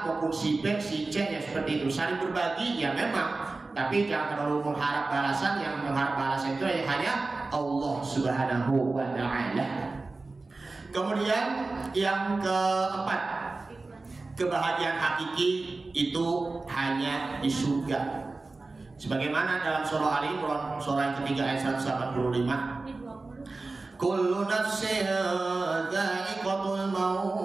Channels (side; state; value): left; quieter; 3.5 dB